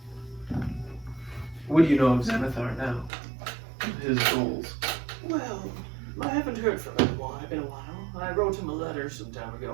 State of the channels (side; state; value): left; drops out; at 3.1 s